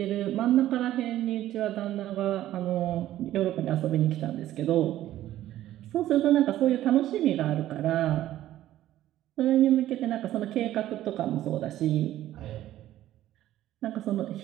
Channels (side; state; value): left; quieter; 13.5 dB